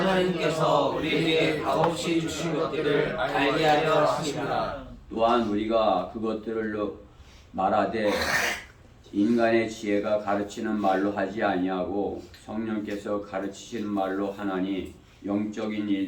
우리에게 값없이 주신 것들을 알게 하려 하심이라. 또한 우리가 그것들을 말하되 인간의 지혜가 가르치는 말로 하지 아니하고 성령께서 가르치시는 말로 하나니 영적인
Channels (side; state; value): both; identical; correlation 1.00